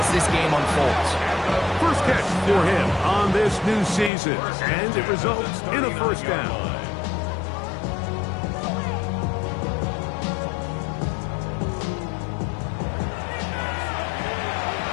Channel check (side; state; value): right; drops out; at 4.1 s